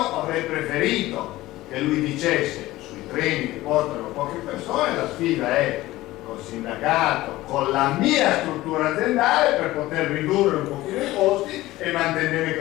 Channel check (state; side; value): quieter; right; 17.3 dB